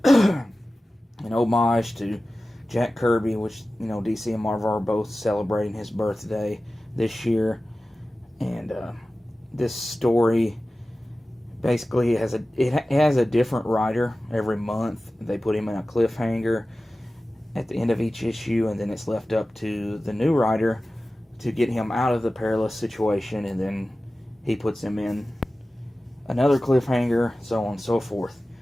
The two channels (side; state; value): both; normal; correlation 0.96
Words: homage to Jack Kirby, which, DC and Marvel are both celebrating his birthday this year. And this story basically it has a different writer every month. They put him in a cliffhanger at the end of each issue, and then it's left up to the new writer to get him out of the perilous situation, and then he puts him in another cliffhanger, so on and so forth.